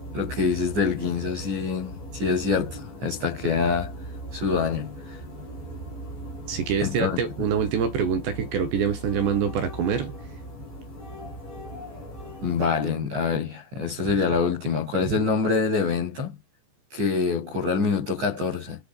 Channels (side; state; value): left; late; 14 ms